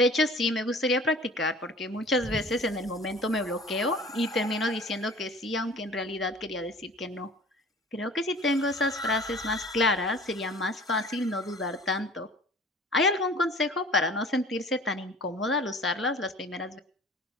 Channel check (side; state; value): both; normal; correlation 0.46